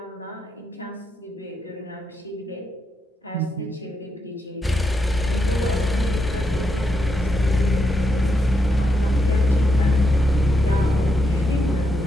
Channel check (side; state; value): both; normal; correlation 0.82